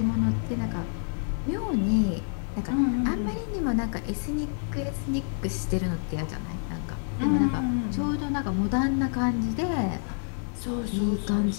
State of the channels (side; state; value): right; silent; digital silence